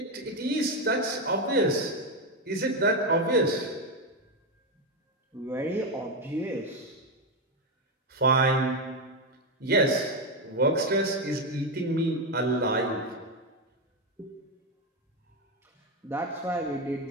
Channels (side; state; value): both; normal; correlation 0.09